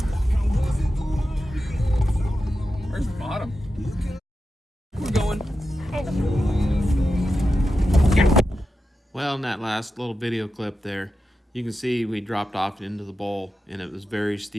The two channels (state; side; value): normal; both; correlation 0.90